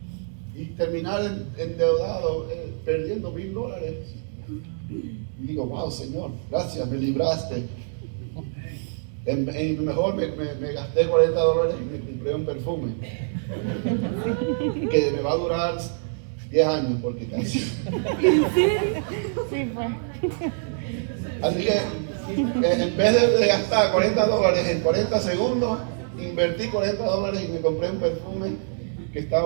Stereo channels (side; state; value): left; silent; digital silence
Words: y terminar endeudado, perdiendo $1,000. Y digo, wow, Señor, gracias, me libraste. Mejor me gasté $40 y me compré un perfume que me va a durar 10 años, porque casi. Sí, fue. Así que en vez de gastar $40 en 40 segundos, invertí $40 y me compré un perfume que